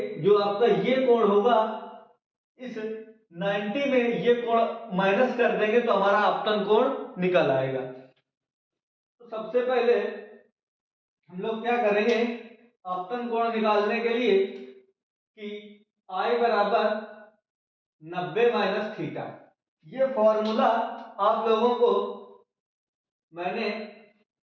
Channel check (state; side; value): identical; both; correlation 1.00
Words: जो आपका ये कोण होगा इस 90 में ये कोण माइनस कर देंगे तो हमारा आपतन कोण निकल आएगा। तो सबसे पहले हम लोग क्या करेंगे आपतन कोण निकालने के लिए कि I बराबर 90 माइनस थीटा। ये फॉर्मूला आप लोगों को मैंने